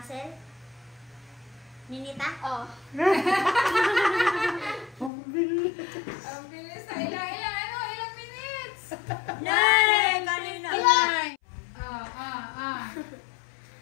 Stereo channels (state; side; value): drops out; right; at 5.1 s